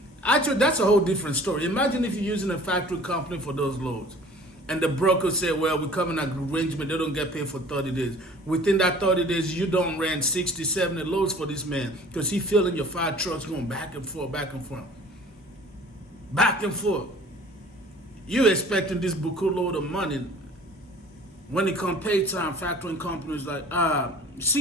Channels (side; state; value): both; normal; correlation 0.48